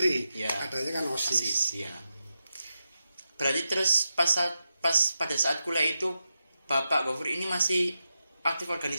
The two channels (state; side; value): inverted; both; correlation -0.89